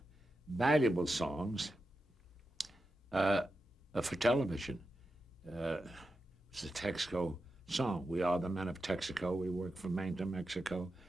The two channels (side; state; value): both; normal; correlation 0.89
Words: valuable songs for television. It's the Texaco song. We are the men of Texaco. We work from Maine to Mexico.